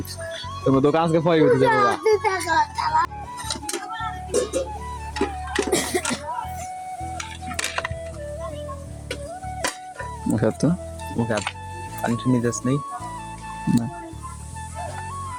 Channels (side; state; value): both; identical; correlation 1.00